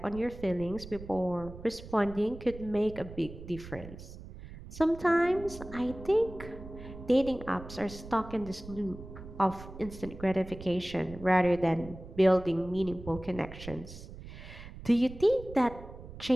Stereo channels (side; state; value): right; noise; rumble, 14 dB below the sound